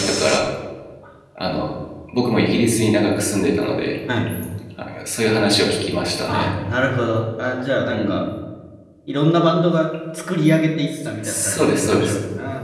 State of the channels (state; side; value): identical; both; correlation 1.00